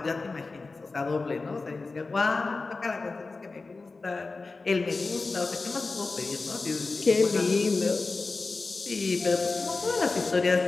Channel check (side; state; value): right; quieter; 3.8 dB